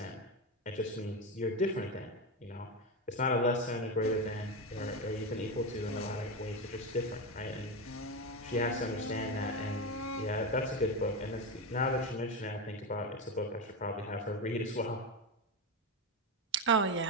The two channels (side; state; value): both; normal; correlation 0.14